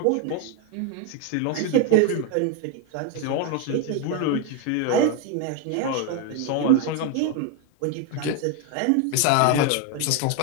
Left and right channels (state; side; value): different; both; correlation 0.01